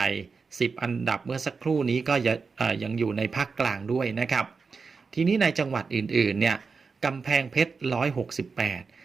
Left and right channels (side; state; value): left; quieter; 4.9 dB